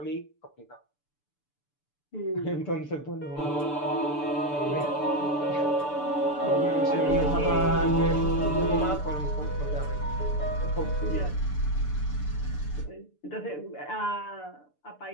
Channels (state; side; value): late; right; 6.8 ms